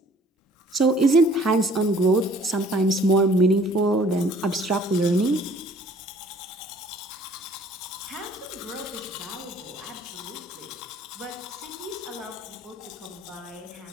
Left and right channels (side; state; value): both; normal; correlation 0.55